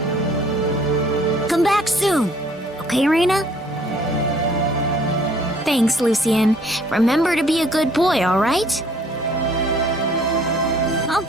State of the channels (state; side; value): normal; both; correlation 0.58